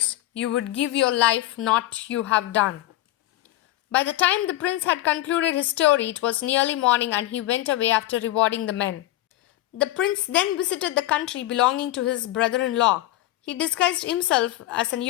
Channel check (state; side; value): quieter; right; 15.5 dB